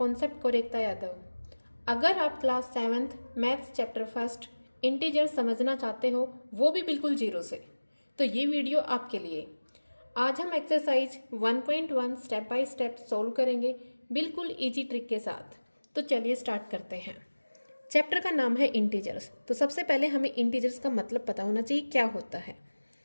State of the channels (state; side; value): inverted; both; correlation -1.00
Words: कोरेक्ता यादव। अगर आप class 7th maths chapter first integer समझना चाहते हो, वो भी बिल्कुल जीरो से, तो ये वीडियो आपके लिए। आज हम exercise 1.1 step by step solve करेंगे बिल्कुल इजी ट्रिक के साथ। तो चलिए स्टार्ट करते हैं। चैप्टर का नाम है इंटीजर्स। तो सबसे पहले हमें इंटीजर्स का मतलब पता होना चाहिए क्या होता है।